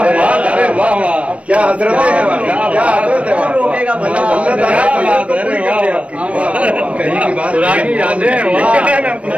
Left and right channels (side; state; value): left; late; 0.063 ms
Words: है। अरे वाह वाह, क्या हजरत है, क्या हजरत है। कौन रोकेगा भला कहीं की बात पुरानी यादें।